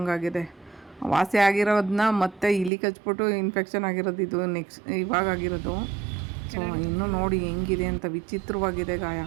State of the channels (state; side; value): drops out; left; at 2.7 s